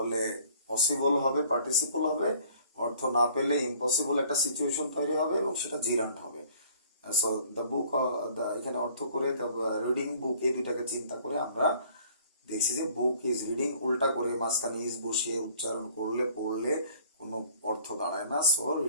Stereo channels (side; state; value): both; inverted; correlation -0.55